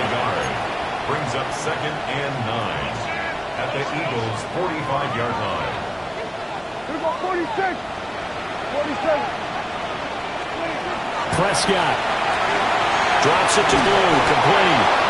a yard brings up 2nd and 9. At the Eagles' 45-yard line. 46. 47. Prescott drops it to Blue, complete.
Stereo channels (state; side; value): identical; both; correlation 1.00